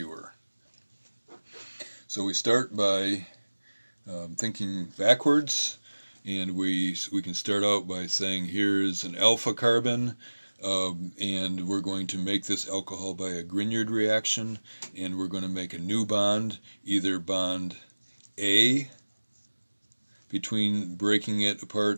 So we start by thinking backwards, and we can start out by saying here's an alpha carbon, and we're going to make this alcohol by a Grignard reaction, and we're going to make a new bond, either bond A, between breaking it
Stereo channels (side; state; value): both; inverted; correlation -1.00